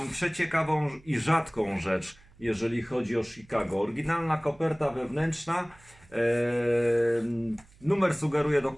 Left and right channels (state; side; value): noise; right; hum, 27 dB below the sound